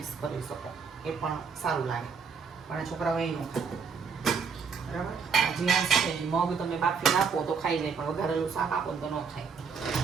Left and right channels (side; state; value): left; quieter; 5.8 dB